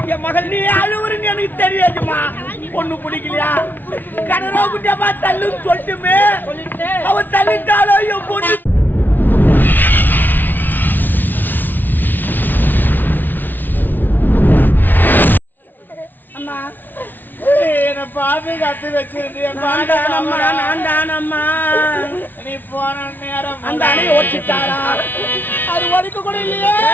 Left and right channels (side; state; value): right; late; 0.088 ms